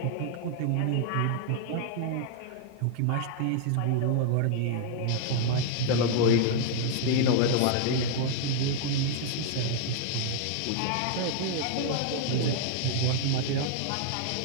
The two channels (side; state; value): both; different; correlation 0.00